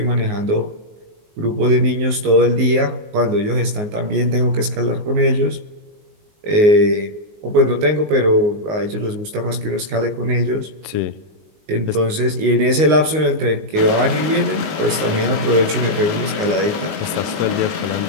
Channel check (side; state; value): left; late; 19 ms